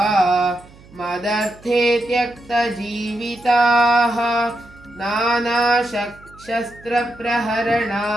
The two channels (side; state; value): right; noise; hum, 24 dB below the sound